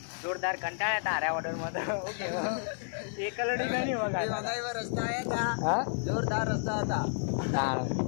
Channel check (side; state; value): right; silent; 57 dB below the other